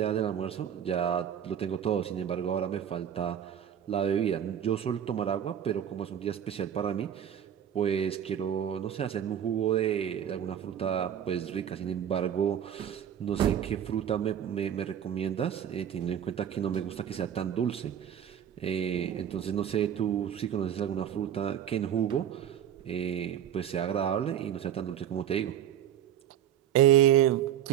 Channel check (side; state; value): left; quieter; 9.8 dB